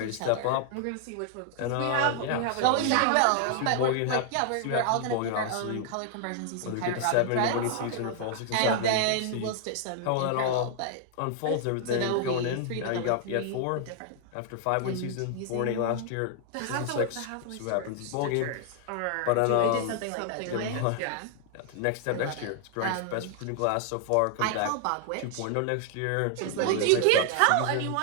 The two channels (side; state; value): both; different; correlation 0.00